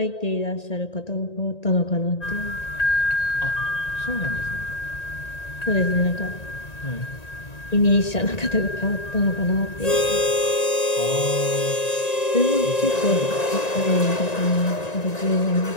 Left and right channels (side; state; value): right; late; 1.9 ms